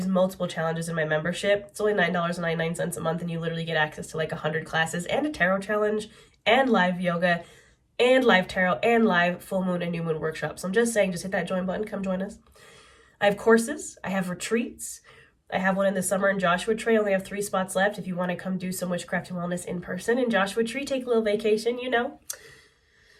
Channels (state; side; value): identical; both; correlation 1.00